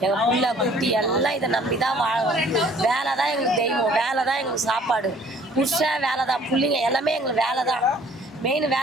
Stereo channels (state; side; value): normal; both; correlation 0.56